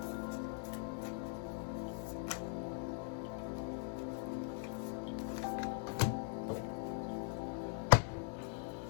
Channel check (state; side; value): silent; right; 50 dB below the other